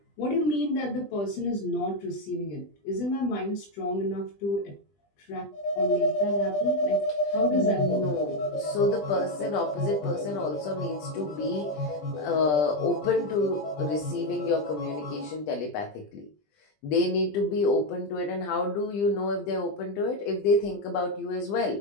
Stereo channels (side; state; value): right; late; 20 ms